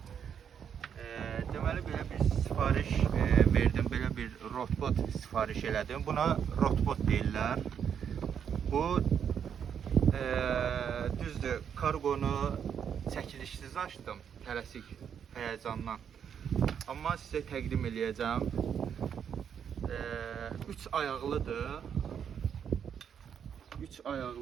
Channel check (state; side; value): quieter; left; 8.0 dB